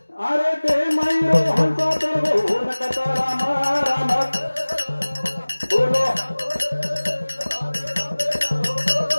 अरे दे माईरो हंसा तर हो नकता राम राम बोलो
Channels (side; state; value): both; inverted; correlation -1.00